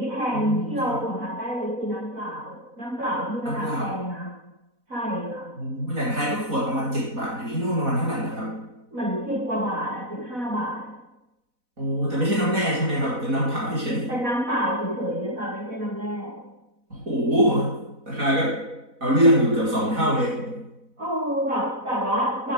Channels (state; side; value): late; left; 4.0 ms